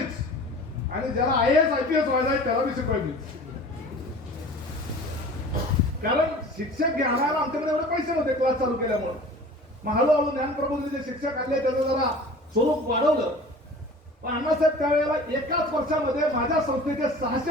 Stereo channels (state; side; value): normal; both; correlation 0.42